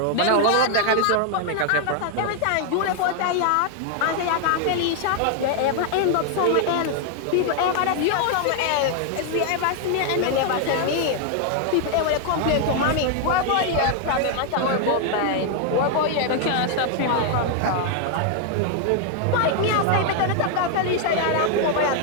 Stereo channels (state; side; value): different; both; correlation 0.00